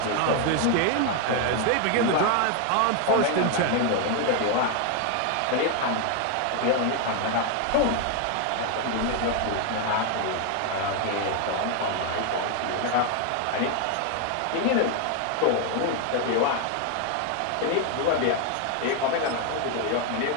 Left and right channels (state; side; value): different; both; correlation 0.01